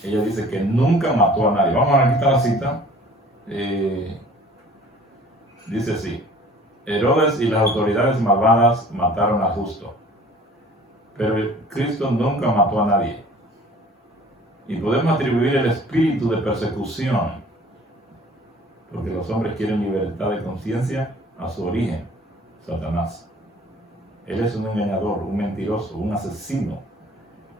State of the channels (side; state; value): both; normal; correlation 0.50